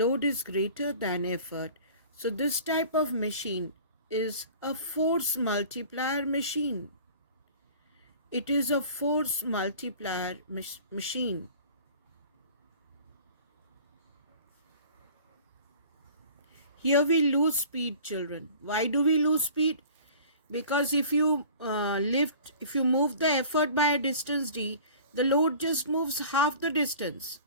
is greater than effort. So this type of machine is a force multiplier machine. It is a force multiplier machine. Here we lose speed, children. Why do we lose speed? Because if you move the effort by a distance d, the load just moves half the distance.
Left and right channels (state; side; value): inverted; both; correlation -0.45